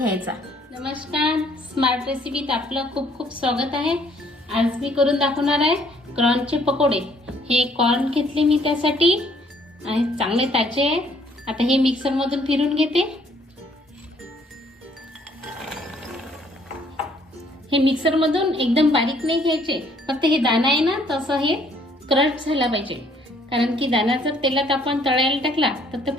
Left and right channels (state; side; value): normal; both; correlation 0.63